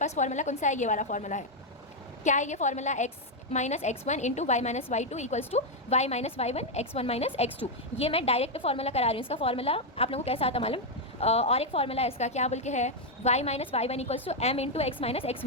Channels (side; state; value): both; normal; correlation 0.01